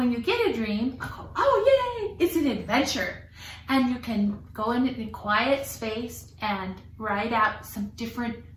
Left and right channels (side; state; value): both; identical; correlation 1.00